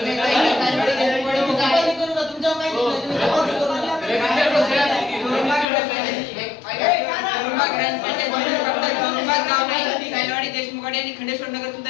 देशमुख आणि खंडेश्वर नगर सुद्धा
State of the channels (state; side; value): drops out; right; at 5.7 s